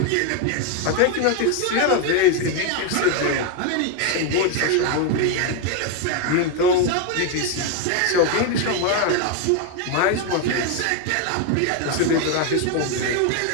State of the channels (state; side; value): different; both; correlation 0.01